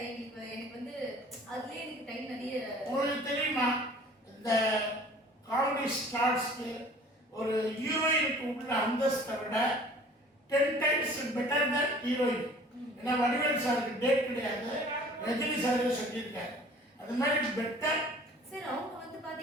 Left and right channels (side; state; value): both; normal; correlation 0.49